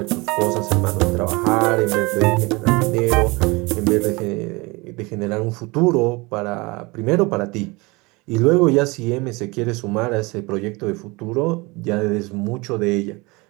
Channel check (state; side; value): quieter; left; 25.0 dB